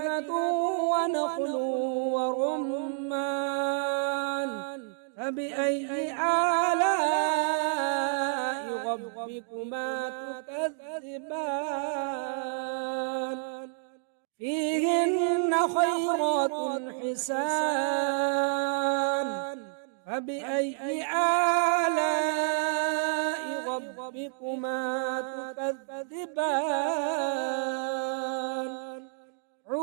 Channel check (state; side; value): silent; left; digital silence